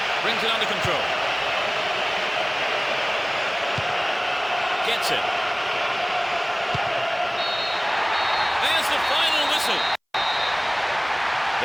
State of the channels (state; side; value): identical; both; correlation 1.00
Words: Brings it under control. Gets it. There's the final whistle.